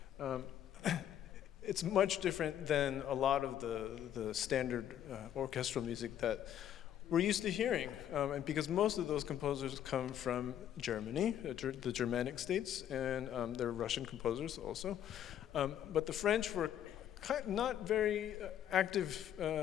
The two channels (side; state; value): right; quieter; 10.5 dB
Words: It's much different than a lot of the standard orchestral music that we're used to hearing, and because most of those composers come from Germany, the Germanic states, and they're Russian composers also. But the French were not very active